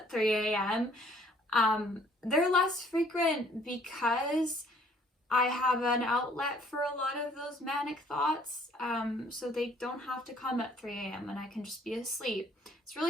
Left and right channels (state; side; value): normal; both; correlation 0.60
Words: 3 a.m., they're less frequent because I have an outlet for a lot of those manic thoughts, so they don't have to come at 3 a.m. and I can just be asleep. It's